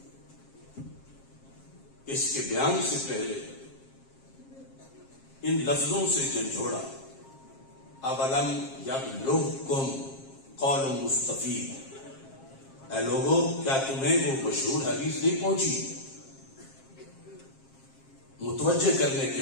اس کے بیان سے پہلے ان لفظوں سے جھنجھوڑا، اولم یبلغکم قول مصطفی، اے لوگو کیا تمہیں وہ مشہور حدیث نہیں پہنچی؟ متوجہ کرنے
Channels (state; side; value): late; right; 7.5 ms